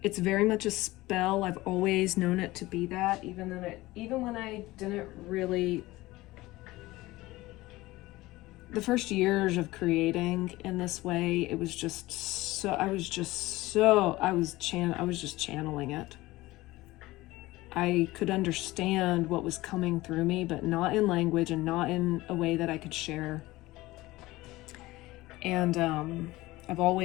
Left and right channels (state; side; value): quieter; right; 19.0 dB